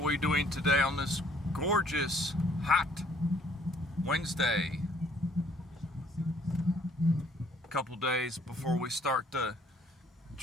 we doing today on this gorgeous, hot Wednesday? A couple days before we start the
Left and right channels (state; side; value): normal; both; correlation 0.61